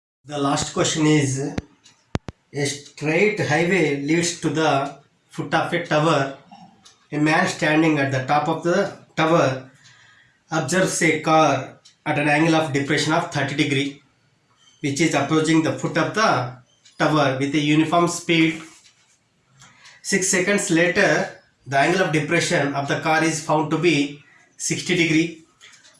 The last question is a straight highway leads to the foot of a tower. A man standing at the top of the tower observes a car at an angle of depression of 30 degree which is approaching the foot of the tower with a uniform speed. 6 seconds later, the angle of depression of the car is found to be 60 degree.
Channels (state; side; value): identical; both; correlation 1.00